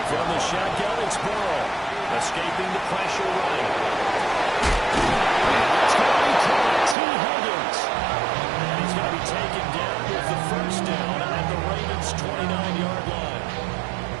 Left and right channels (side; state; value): left; drops out; at 7.0 s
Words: From the shotgun, it's Burrow. Escaping the pressure right. It's going to be caught. T. Higgins. And he's going to be taken down with the first down at the Ravens' 29-yard line.